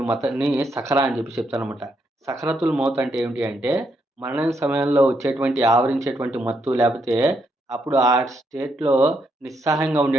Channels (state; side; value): normal; both; correlation 0.78